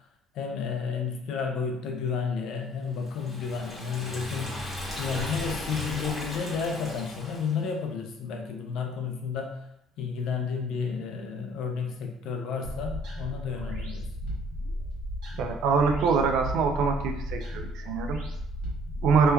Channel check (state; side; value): normal; both; correlation 0.56